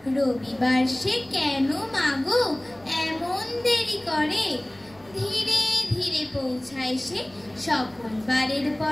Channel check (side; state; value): right; noise; rumble, 27 dB below the sound